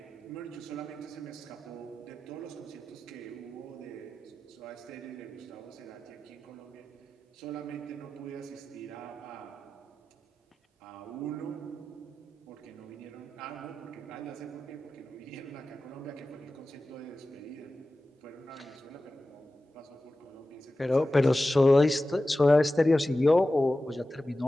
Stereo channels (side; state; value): both; normal; correlation 0.95